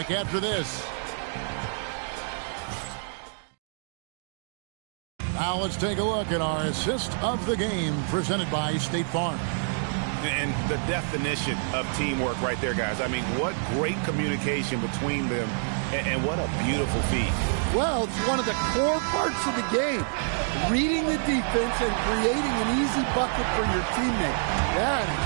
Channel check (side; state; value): left; silent; digital silence